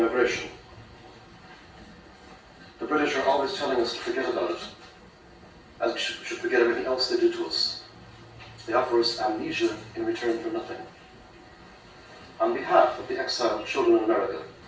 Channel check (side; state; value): both; identical; correlation 1.00